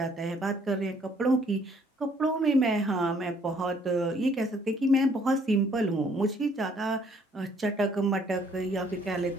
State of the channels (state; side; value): normal; both; correlation 0.63